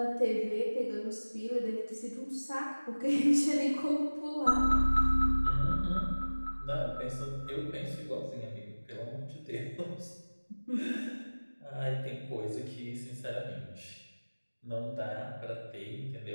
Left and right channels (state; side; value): inverted; both; correlation -1.00